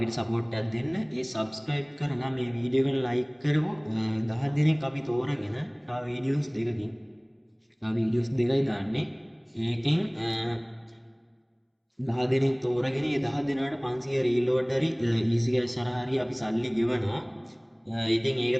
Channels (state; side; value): identical; both; correlation 1.00